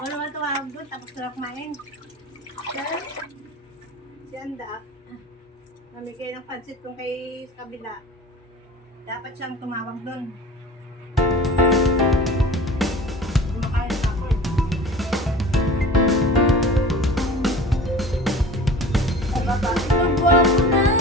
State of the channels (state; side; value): normal; both; correlation 0.40